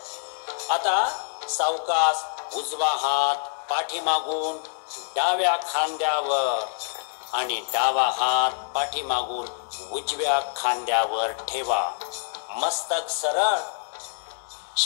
आता सावकाश उजवा हात पाठीमागून डाव्या खांद्यावर आणि डावा हात पाठीमागून उजव्या खांद्यावर ठेवा. मस्तक सरळ.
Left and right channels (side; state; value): right; silent; digital silence